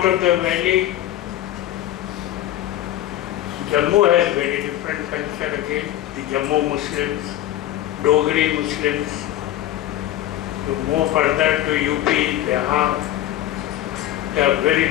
of the valley, Jammu has very different culture again. The Jammu Muslims, Dogri Muslims. You move further to UP, Bihar, they have very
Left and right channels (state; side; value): quieter; right; 13.3 dB